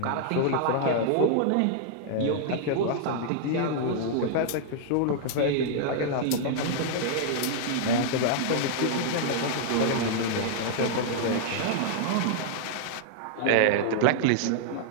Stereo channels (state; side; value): different; both; correlation -0.01